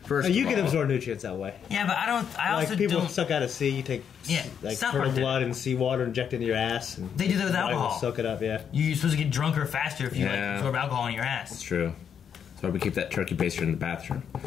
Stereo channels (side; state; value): right; quieter; 7.8 dB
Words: First, You of can all. absorb nutrients that way. Yeah, but I Like also people don't. suck out of sea, you take Yeah, like South turtle Park did it. blood and seawater, inject it into your ass, and They do that with body will alcohol. soak it up. Yeah, You're supposed to get drunker faster if you like Yeah. absorb alcohol in your It's ass. true. That's why we keep that turkey baster in the bathroom.